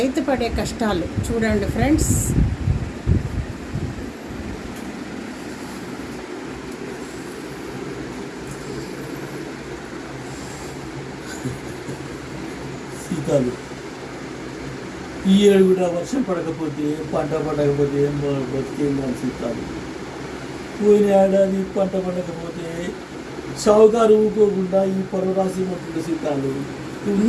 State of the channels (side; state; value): both; identical; correlation 1.00